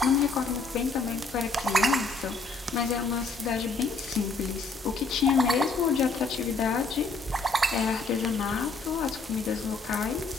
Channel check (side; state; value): right; quieter; 3.9 dB